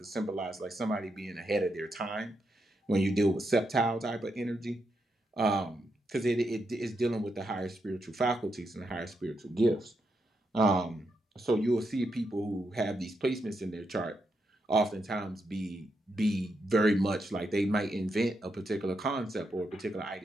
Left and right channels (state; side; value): normal; both; correlation 0.83